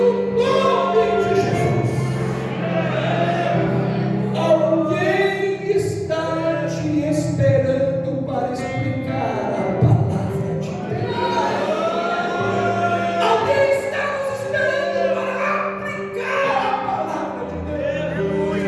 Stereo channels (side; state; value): both; identical; correlation 1.00